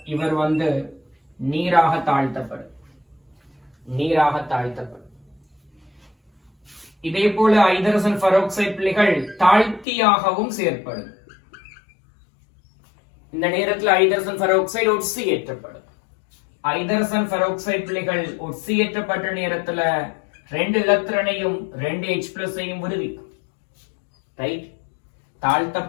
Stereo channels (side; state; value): right; drops out; at 9.9 s